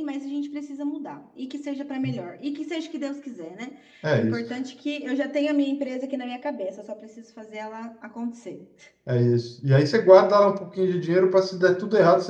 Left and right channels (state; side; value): identical; both; correlation 1.00